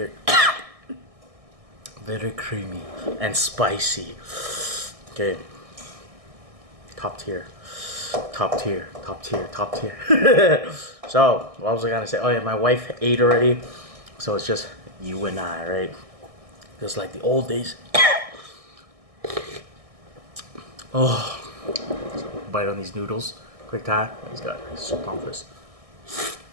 very creamy and spicy. Okay. Top tier. Top tier, top tier, top tier. So, what was I gonna say? Oh yeah, my wife ate already. So it's just you and I, right? Just like the old days. Oh, bite on these noodles. Quick time. He's got soup on this.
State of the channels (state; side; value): late; left; 1.6 ms